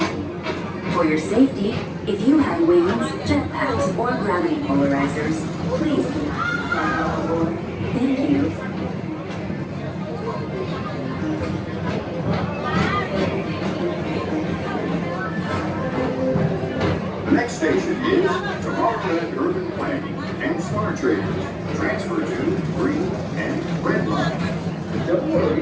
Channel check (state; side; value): identical; both; correlation 1.00